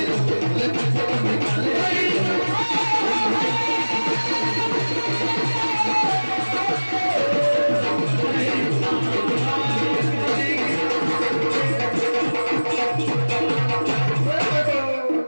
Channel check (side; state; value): both; inverted; correlation -1.00